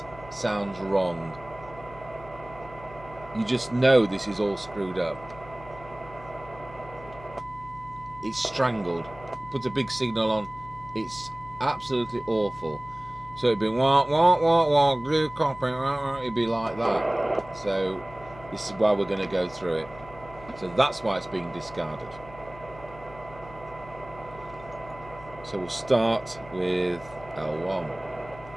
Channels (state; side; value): noise; left; hum, 18 dB below the sound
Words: sounds wrong. You just know this is all screwed up. It's strangled. Put a big signal on. It's absolutely awful. So it'd be wah wah wah wah glue copy. It'd be like that. So this is why we're going to go through it. So that's why it's being discarded. So we'll start with L1.